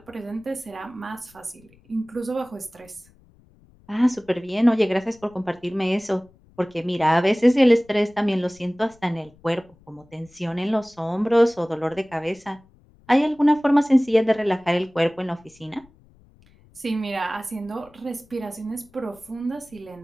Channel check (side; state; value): left; noise; rumble, 29 dB below the sound